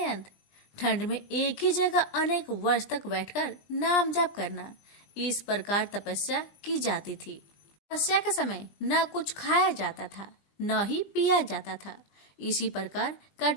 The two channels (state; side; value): late; right; 20 ms